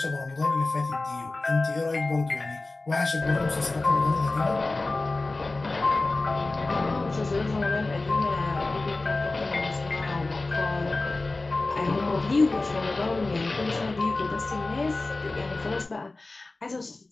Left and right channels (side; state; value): right; quieter; 3.2 dB